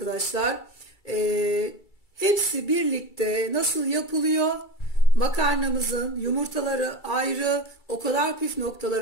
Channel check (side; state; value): right; late; 2.3 ms